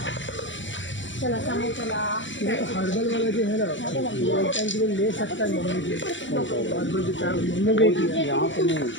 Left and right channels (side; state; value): right; late; 0.54 ms